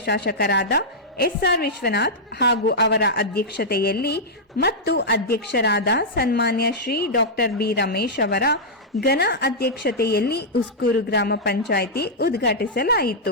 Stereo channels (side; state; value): both; normal; correlation -0.09